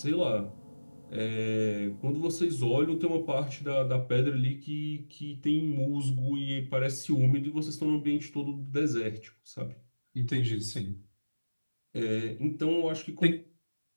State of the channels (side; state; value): both; inverted; correlation -1.00